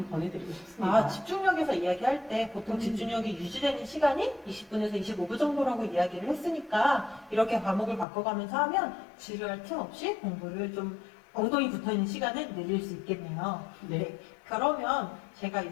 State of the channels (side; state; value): right; drops out; at 8.1 s